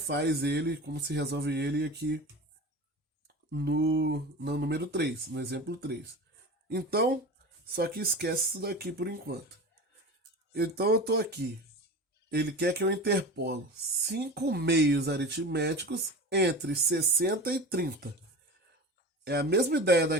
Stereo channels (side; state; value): both; normal; correlation 0.31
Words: ele, como se resolve ele aqui no número 3, no exemplo 3. Então, só que esquece isso daqui por enquanto. Então eu estou aqui. Ele quer que eu interpolo 5 meios aritméticos entre 60 e 30. É a mesma ideia